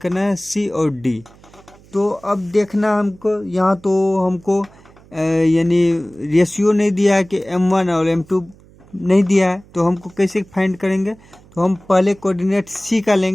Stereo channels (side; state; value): right; noise; hum, 26 dB below the sound